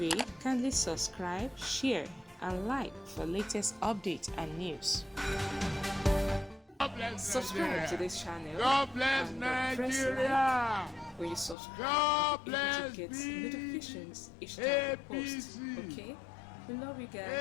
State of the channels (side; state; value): right; drops out; at 11.6 s